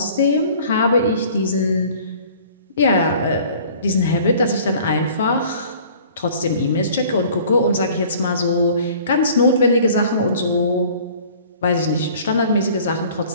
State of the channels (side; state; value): both; inverted; correlation -0.50